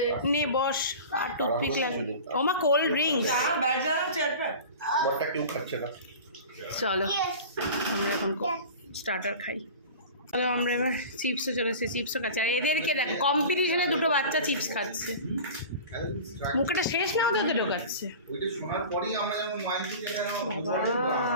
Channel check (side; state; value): both; inverted; correlation -0.36